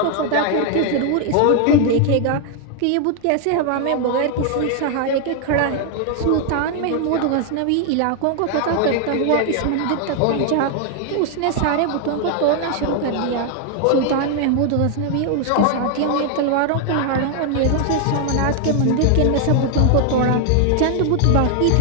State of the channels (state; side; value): different; both; correlation 0.00